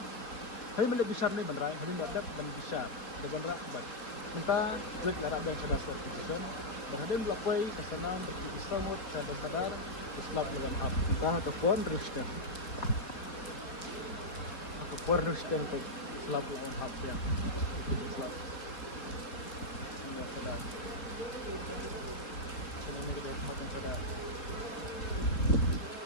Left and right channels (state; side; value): late; right; 4.4 ms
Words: besar ni banrai, hadap ban besar. Ada banra kubat. Minta kulit lara dan sadar certification. Berhadap melakukan kesenam berkisamut sadar Islam lawan hap kita ataupun Kristen untuk Islam lawan hap ya.